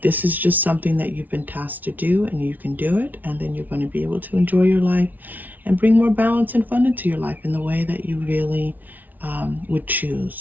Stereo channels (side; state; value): left; late; 0.080 ms